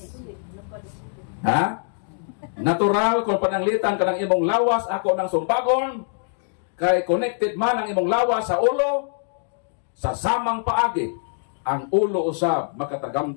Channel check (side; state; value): right; silent; digital silence